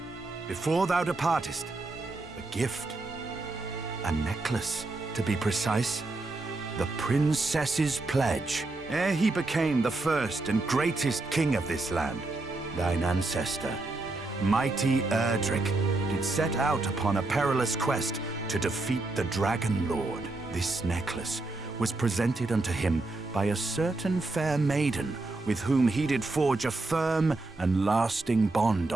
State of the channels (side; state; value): left; quieter; 3.1 dB